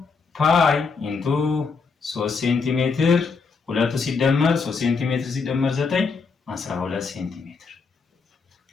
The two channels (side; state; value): right; quieter; 4.9 dB